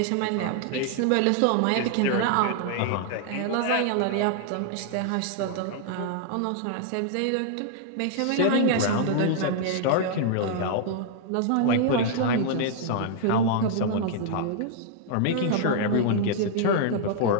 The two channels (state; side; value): different; both; correlation -0.01